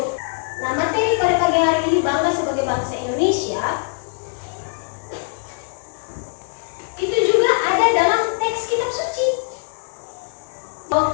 Nah, materi pada pagi hari ini bangga sebagai bangsa Indonesia itu juga ada dalam teks kitab suci.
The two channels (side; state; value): right; silent; digital silence